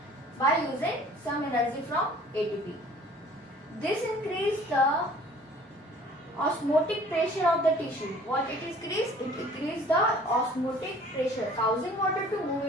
by using some energy from ATP. This increases the osmotic pressure of the tissue. What it increases? It increases the osmotic pressure, causing water to move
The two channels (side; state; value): both; normal; correlation 0.51